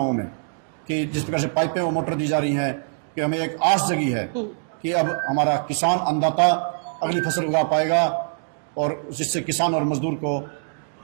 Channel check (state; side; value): silent; left; digital silence